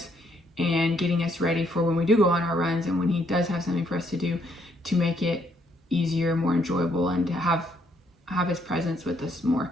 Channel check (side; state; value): both; normal; correlation 0.71